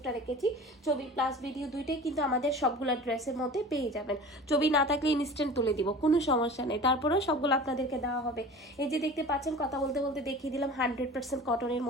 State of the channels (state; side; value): normal; both; correlation 0.38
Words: রেখেছি। ছবি প্লাস ভিডিও দুইটাই কিন্তু আমাদের সবগুলো ড্রেসের মধ্যে পেয়ে যাবেন। ছবি না থাকলে ইনস্ট্যান্ট তুলে দিব, কোনো সমস্যা নেই, তারপরেও সবগুলো আপনাদেরকে দেওয়া হবে। এই যে দেখতে পাচ্ছেন কথা বলতে বলতে দেখিয়ে দিলাম 100% কটনের